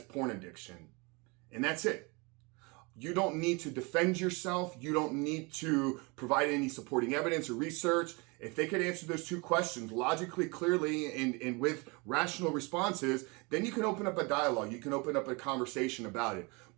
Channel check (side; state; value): left; quieter; 28.2 dB